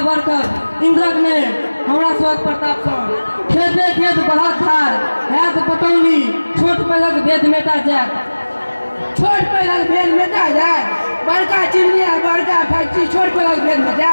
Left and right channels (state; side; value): inverted; both; correlation -1.00